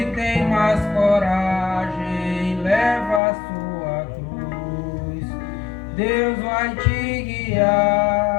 Deus vai te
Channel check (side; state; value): right; drops out; at 3.2 s